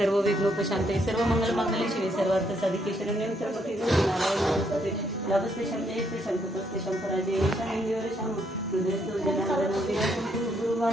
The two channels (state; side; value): normal; both; correlation 0.73